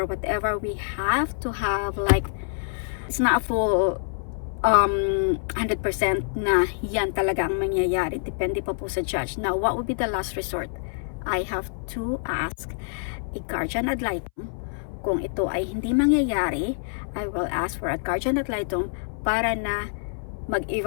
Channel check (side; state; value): right; silent; 61 dB below the other